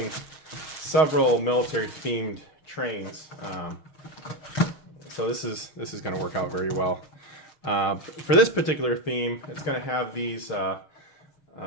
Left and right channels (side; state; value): right; late; 6.4 ms